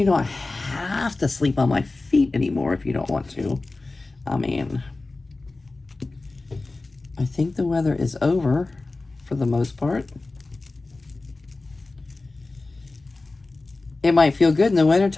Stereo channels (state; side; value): quieter; right; 3.3 dB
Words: don't have to sleep on my feet anymore if you don't want to. I mean, I think the weather is over for the most part. It might feel good in the